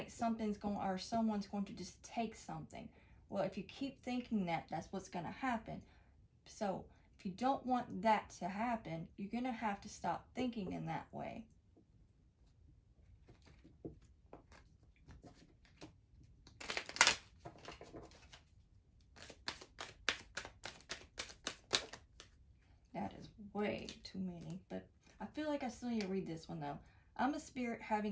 someone's going to just take something. Well, if you keep thinking that, that's what's going to happen. So if you don't want that to happen, you're going to have to stop thinking in that way. That is way too many, but I feel like I still need to read this one though. I'm a spirit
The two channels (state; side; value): identical; both; correlation 1.00